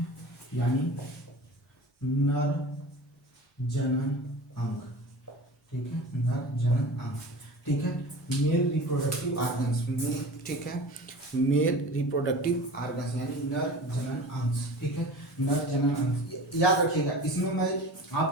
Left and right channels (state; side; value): normal; both; correlation 0.36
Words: यानी नर जनन अंग, ठीक है, नर जनन अंग, ठीक है, मेल रिप्रोडक्टिव ऑर्गन्स में, ठीक है, मेल रिप्रोडक्टिव ऑर्गन्स यानी नर जनन अंश, ठीक है, नर जनन अंश। याद रखिएगा, इसमें मैं